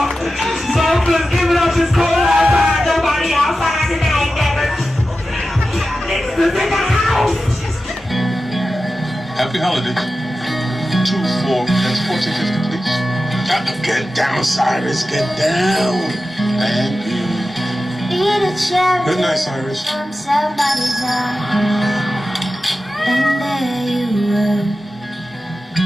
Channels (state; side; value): normal; both; correlation 0.93